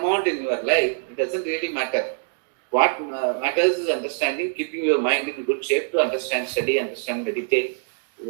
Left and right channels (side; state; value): left; silent; digital silence